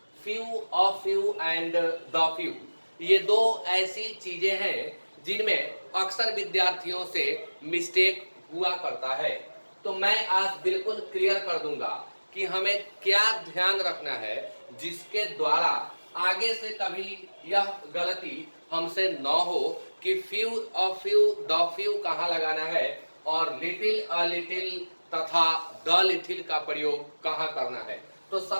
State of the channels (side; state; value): both; inverted; correlation -1.00